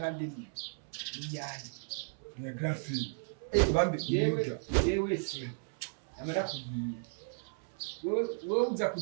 Ni grafi. Bambe Yewe se. Amara kugiye. Wewe uza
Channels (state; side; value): silent; left; 55 dB below the other